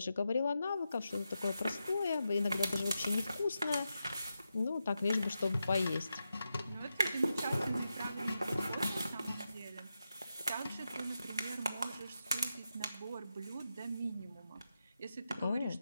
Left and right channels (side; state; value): both; inverted; correlation -0.88